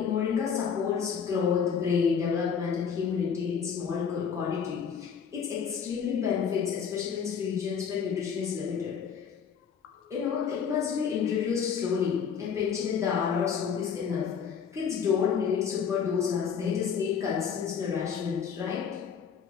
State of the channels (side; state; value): right; quieter; 7.0 dB